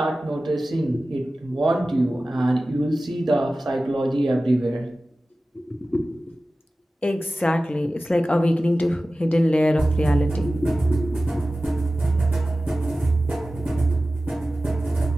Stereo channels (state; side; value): normal; both; correlation 0.96